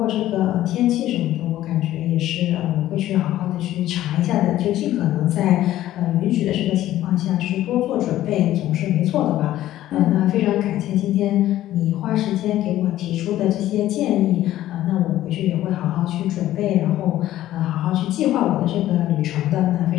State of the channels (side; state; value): right; quieter; 13.8 dB